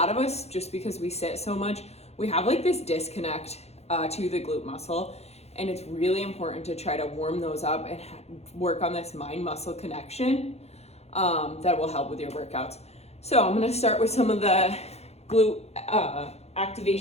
of us, just because we sit so much, we have like this disconnect to the glute muscle. And it's really important to try to warm those up and work on this mind muscle connection that will help with your workouts. So I'm gonna start with some of the glute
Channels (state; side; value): late; right; 0.31 ms